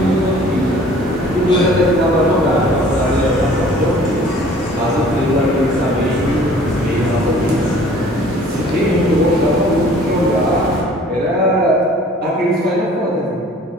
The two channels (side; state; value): both; normal; correlation 0.51